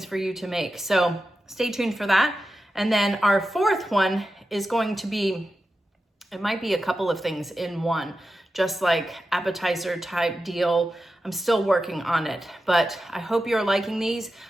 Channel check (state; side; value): normal; both; correlation 0.91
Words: for you to make. So stay tuned for that. And then our fourth one is going to be, it might be a couple of things in one, just like appetizer type deal. I'm still working on it, but I hope you're liking these.